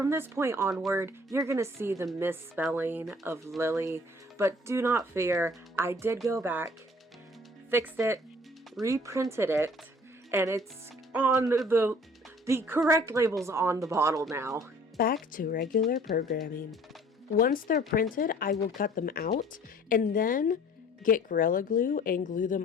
this point onward, you're going to see the misspelling of Lily, but do not fear, I did go back, fixed it, reprinted it, and it's on the correct labels on the bottle now. Back to regular programming. Once they're printed, I will cut them out and then get Gorilla Glue and glue them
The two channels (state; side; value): normal; both; correlation 0.53